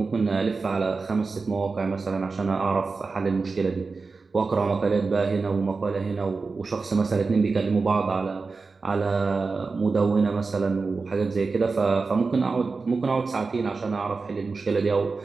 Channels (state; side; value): quieter; left; 4.3 dB